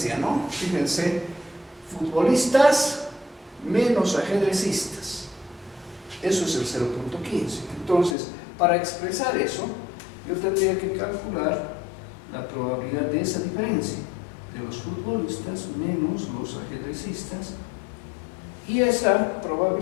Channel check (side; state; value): right; drops out; at 8.2 s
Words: ¿no? Fíjense, futbolistas menos ajedrecistas. Eso es el 0.15. Entonces, para expresar eso, yo tendría que calcular la probabilidad de esa diferencia, de los futbolistas menos los ajedrecistas, y esa